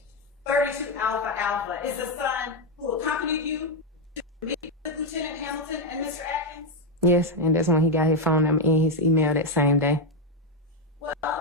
32 Alpha Alpha is the son who accompanied you to meet with Lieutenant Hamilton and Mr. Atkins? Yes, and that's when he got his phone number and his email that same day. Well,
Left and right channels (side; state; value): both; normal; correlation 0.06